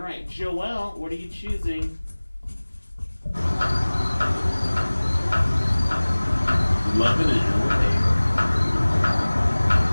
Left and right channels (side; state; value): both; inverted; correlation -1.00